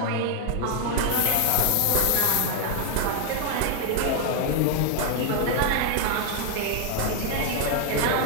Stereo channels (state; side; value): different; both; correlation 0.00